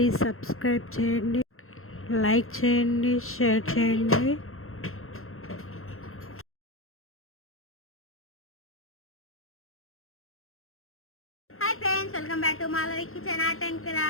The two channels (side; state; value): right; late; 0.62 ms